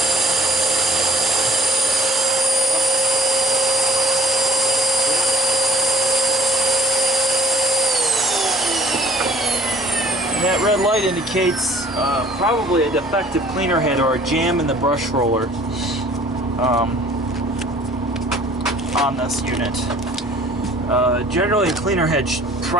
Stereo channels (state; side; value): normal; both; correlation 0.55